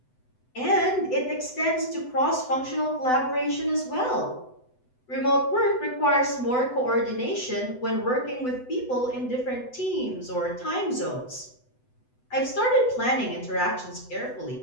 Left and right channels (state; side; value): late; right; 8.0 ms